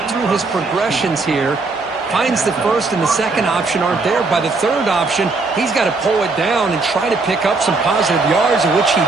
through his progressions here. Finds the first and the second option aren't there. By the third option, he's got to pull it down and try to pick up some positive yards, of which he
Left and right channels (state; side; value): quieter; left; 3.8 dB